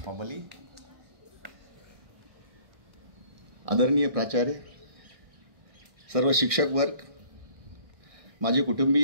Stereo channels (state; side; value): late; left; 1.6 ms